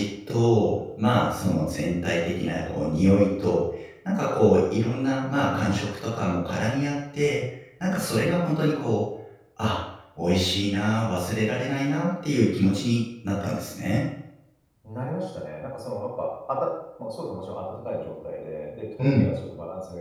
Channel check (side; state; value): both; identical; correlation 1.00